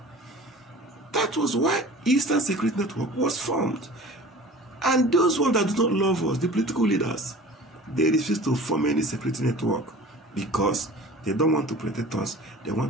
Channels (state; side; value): normal; both; correlation 0.42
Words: That was why Eastern Security Network was formed. And those ones that do not love us, the political leaders, they refuse to form any security network because they don't want to protect us. They